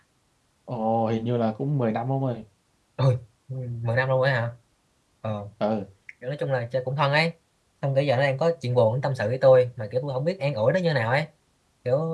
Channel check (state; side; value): identical; both; correlation 1.00